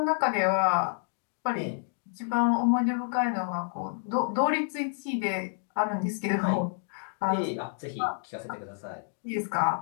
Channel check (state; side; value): silent; right; digital silence